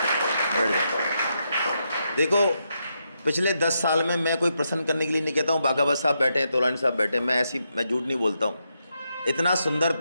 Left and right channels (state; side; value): inverted; both; correlation -0.82